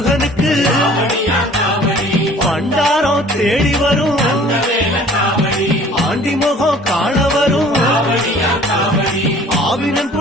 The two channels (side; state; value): both; normal; correlation 0.51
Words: பண்டாரம் தேடி வரும் ஆண்டி முகம் காண வரும் ஆவினன்